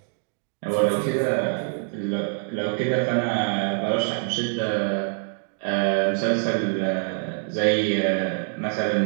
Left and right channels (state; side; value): silent; left; 59 dB below the other